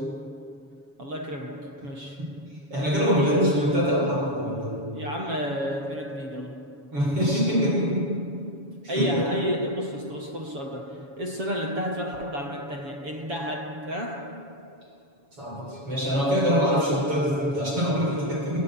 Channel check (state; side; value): late; left; 7.2 ms